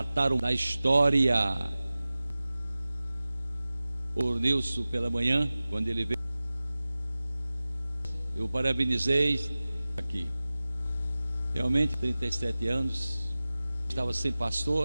da história. O Nilson pela manhã, quando ele veio, eu parabenizei aqui. Realmente 37 anos, estava sem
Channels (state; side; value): inverted; both; correlation -0.97